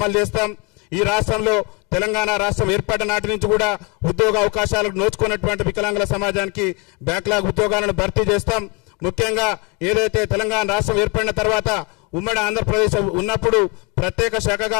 చేస్తాం. ఈ రాష్ట్రంలో తెలంగాణ రాష్ట్రం ఏర్పడిన నాటి నుంచి కూడా ఉద్యోగ అవకాశాలకు నోచుకున్నటువంటి వికలాంగుల సమాజానికి బ్యాక్లాగ్ ఉద్యోగాలను భర్తీ చేస్తాం. ముఖ్యంగా ఏదైతే తెలంగాణ రాష్ట్రం ఏర్పడిన తర్వాత ఉమ్మడి ఆంధ్రప్రదేశ్ ఉన్నప్పుడు ప్రత్యేక శాఖగా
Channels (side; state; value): right; quieter; 30.8 dB